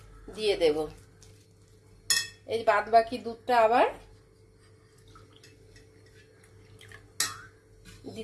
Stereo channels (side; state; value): both; identical; correlation 1.00